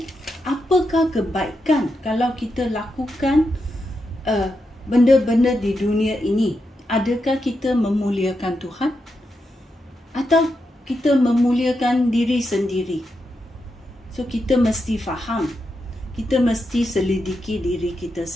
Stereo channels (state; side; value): normal; both; correlation 0.85